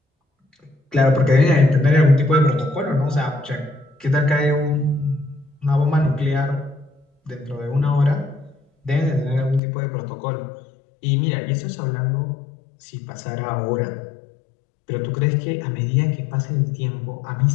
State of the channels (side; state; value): right; drops out; at 9.6 s